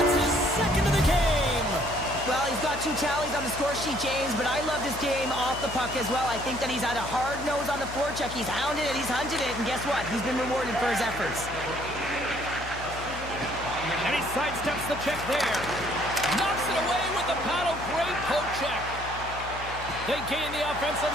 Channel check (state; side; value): noise; left; hum, 12 dB below the sound